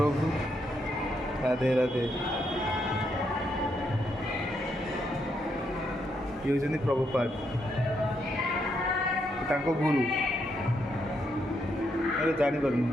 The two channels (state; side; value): normal; both; correlation 0.78